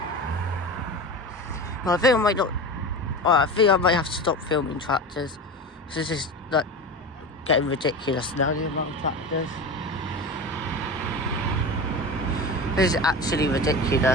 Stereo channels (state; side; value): normal; both; correlation 0.28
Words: Well, I think I might not... Well, I think I might have to stop filming tractors. This is like getting ridiculous now, the amount of tractors. This is actually